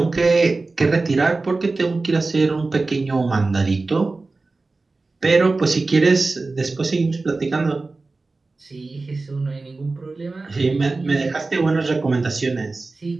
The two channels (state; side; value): quieter; left; 3.6 dB